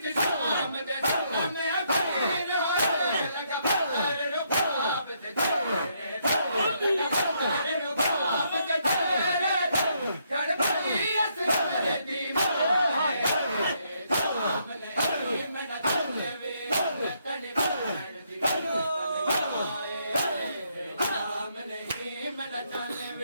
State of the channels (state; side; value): inverted; both; correlation -0.74